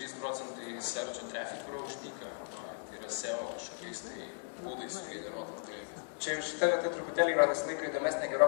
searcho traffic yra uždyka, tai yra SEO kažkokiais būdais sugeneruotas dalykas. Čia jau šitą vietą truputėlį yra visą laiką įdomesnė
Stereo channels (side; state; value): right; silent; 54 dB below the other